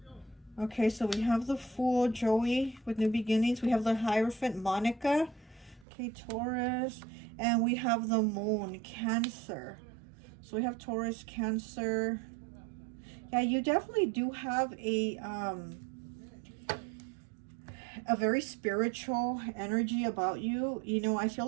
Okay, so we have the Fool, Joey, with New Beginnings. We have the Hierophant, Monica. Okay, Taurus. And we have the Moon, Cancer. So we have Taurus, Cancer. Yeah, you definitely do have a very spiritual energy about you. You know, I feel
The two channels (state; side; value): drops out; left; at 5.9 s